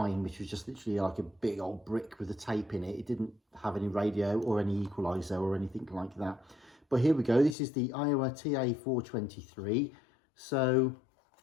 which was just literally like a big old brick with a tape in it. It didn't have any radio or any equaliser or anything like that. But here we go. This is the Aiwa TA423. So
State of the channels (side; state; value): right; drops out; at 7.6 s